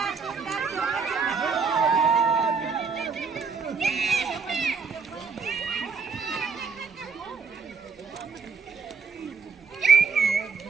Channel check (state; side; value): quieter; left; 5.2 dB